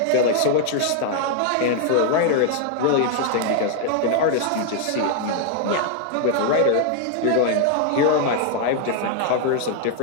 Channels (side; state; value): both; different; correlation 0.00